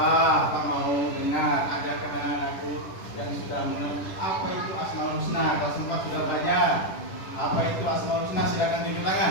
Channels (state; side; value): late; right; 10 ms